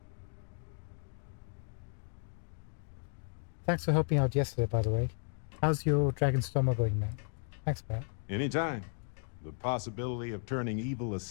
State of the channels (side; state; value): right; silent; digital silence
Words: Thanks for helping out yesterday, by the way. How's your Dragon's Dogma going, man? Thanks, Barrett. Anytime. The possibility of turning evil